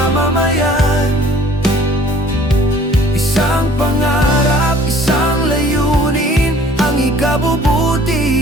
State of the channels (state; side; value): normal; both; correlation 0.53